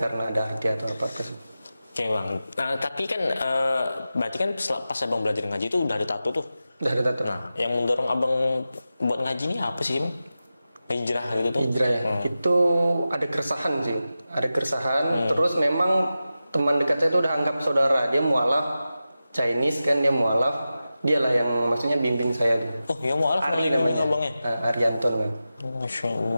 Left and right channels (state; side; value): inverted; both; correlation -0.93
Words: ada arti atau apa-apa sih. Oke bang, nah, tapi kan berarti kan pas abang belajar ngaji itu udah ada tato tuh? Udah ada tato. Nah, yang mendorong abang buat ngaji ini apa sih bang? Hijrah gitu tuh? Hijrah ya, itu ada keresahan sih. Ada keresahan, terus memang teman dekat saya itu udah anggap saudara. Dia mualaf Chinese kan, dia mualaf. Dialah yang maksudnya bimbing saya tuh. Oh ya mualaf Ari namanya abangnya? Arianton kan. Masya